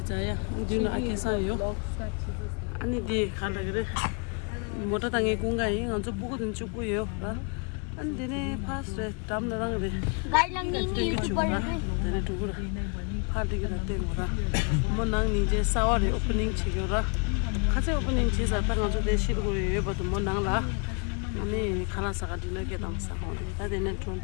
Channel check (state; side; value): quieter; right; 35.3 dB